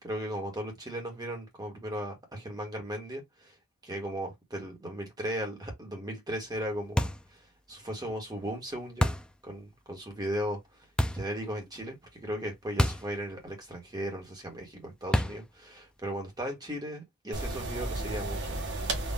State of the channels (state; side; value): normal; both; correlation 0.71